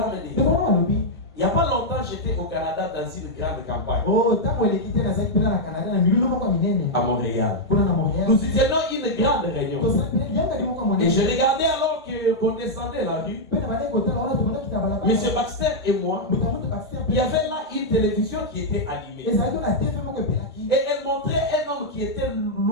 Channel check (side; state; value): both; normal; correlation -0.04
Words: a dit, il n'y a pas longtemps, j'étais au Canada dans une grande campagne. À Montréal. Nous y tenions une grande réunion. Et je regardais alors qu'on descendait la rue. Monsieur Baxter et moi, il y avait là une télévision qui était allumée. Et elle montrait un homme homme qui était